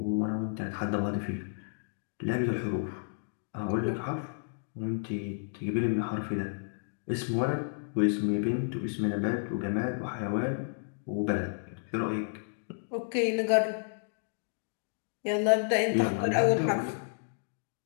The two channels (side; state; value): right; silent; digital silence